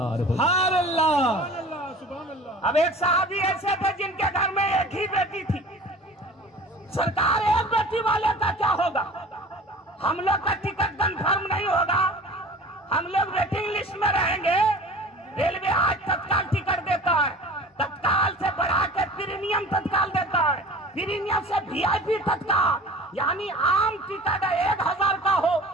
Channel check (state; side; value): normal; both; correlation 0.42